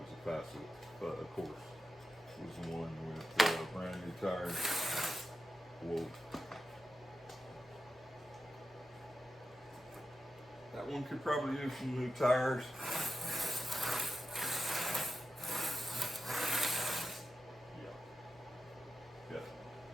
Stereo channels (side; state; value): both; normal; correlation 0.90